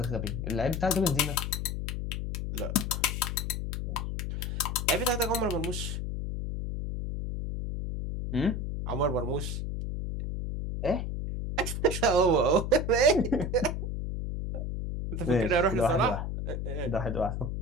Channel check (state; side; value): noise; left; hum, 3 dB below the sound